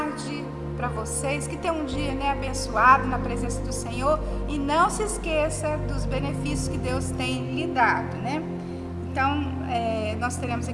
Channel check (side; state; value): both; identical; correlation 1.00